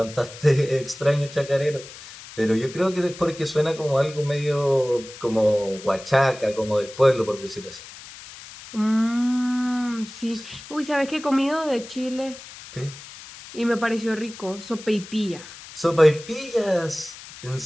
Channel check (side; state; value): left; noise; hiss, 16 dB below the sound